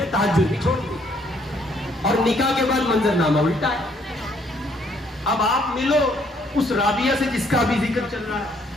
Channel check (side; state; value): both; normal; correlation 0.67